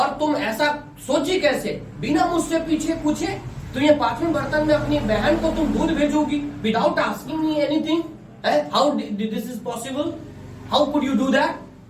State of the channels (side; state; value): both; identical; correlation 1.00